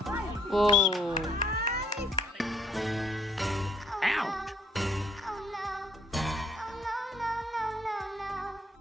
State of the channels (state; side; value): normal; both; correlation 0.65